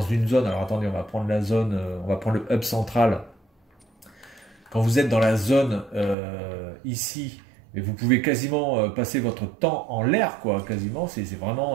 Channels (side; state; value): left; drops out; at 6.2 s